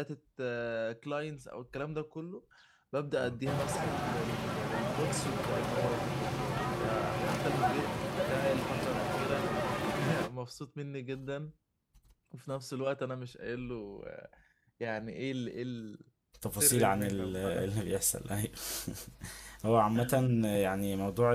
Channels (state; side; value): identical; both; correlation 1.00